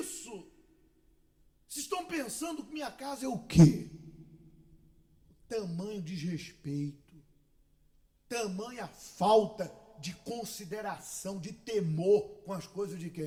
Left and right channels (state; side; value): identical; both; correlation 1.00